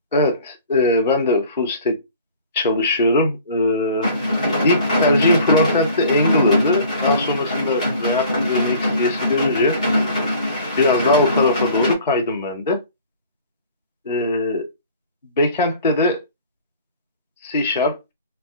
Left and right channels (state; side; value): inverted; both; correlation -0.48